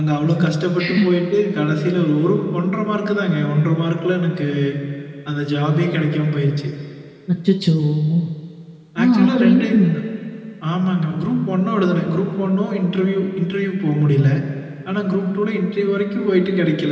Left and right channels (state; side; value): identical; both; correlation 1.00